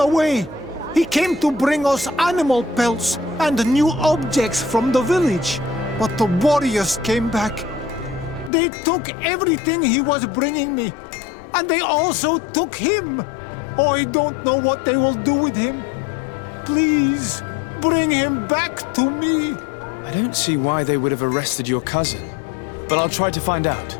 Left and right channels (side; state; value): right; drops out; at 8.5 s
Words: He came to bring us animal pelts and new objects from the village. But the warriors came back. They took everything he was bringing me. And they also took him. Oh, I don't know what they will do with him. Please, bring him back to me. I don't see why they would have arrested your cousin. But I'll try to find out.